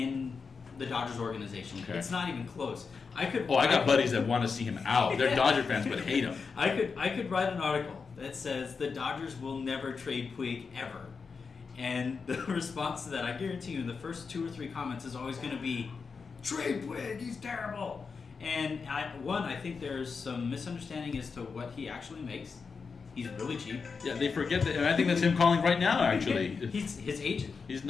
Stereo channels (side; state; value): right; quieter; 5.2 dB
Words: the Dodgers organization. Okay. It's not even close. I got buddies that want to see him out. They're Dodger fans, but hate him. I could write an article that says the Dodgers will never trade Puig ever. And the response to that, I guarantee you, in the first 2 or 3 comments is always going to be, trade Puig, he's terrible. And I think there's some misunderstanding as to what he actually makes. He's really cheap. Yeah, they forget that, and I think that's him calling right now, actually. He's his agent. He's